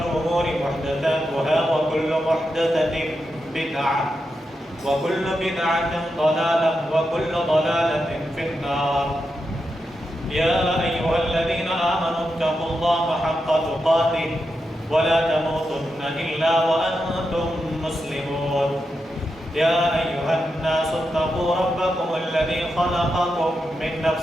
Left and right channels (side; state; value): both; normal; correlation 0.87